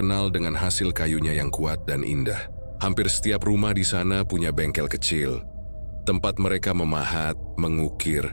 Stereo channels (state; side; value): inverted; both; correlation -1.00